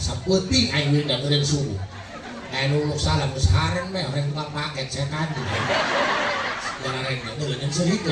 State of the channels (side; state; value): both; identical; correlation 1.00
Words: aing winda eureun subuh aing nuluk salam geus haren we orang tukang paket saya kandi jarang eureun yang